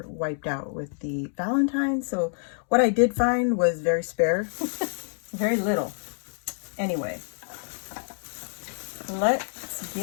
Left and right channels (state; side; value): silent; right; 59 dB below the other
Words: wiped out with the Valentine's. So what I did find was very spare, very little. Anyway, let's